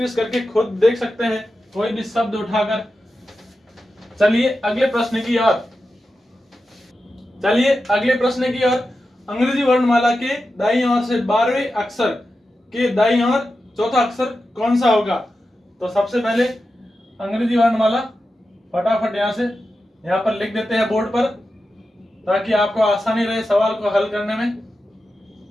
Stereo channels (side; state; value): both; normal; correlation 0.91